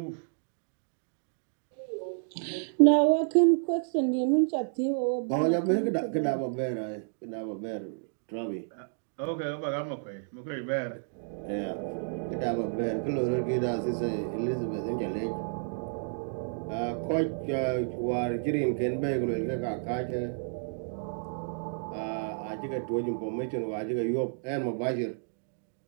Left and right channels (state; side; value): silent; left; digital silence